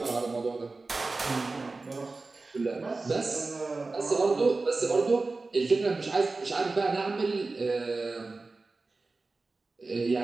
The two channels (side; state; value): left; quieter; 3.6 dB